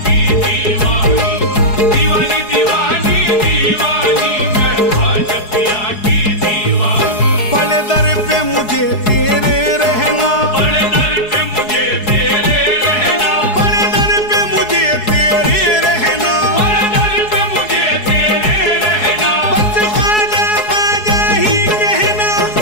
की दीवानी, दीवानी दीवानी दीवानी मैं ख्वाजा पिया की दीवानी। बड़े दर पे मुझे तेरे रहना, बड़े दर पे मुझे तेरे रहना, बड़े दर पे मुझे तेरे रहना, बड़े दर पे मुझे तेरे रहना। बस ख्वाजा ख्वाजा ही कहना,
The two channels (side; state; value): right; late; 4.7 ms